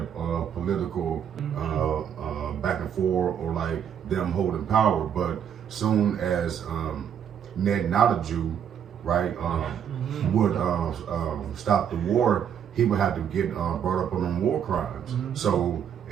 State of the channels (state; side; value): quieter; left; 8.7 dB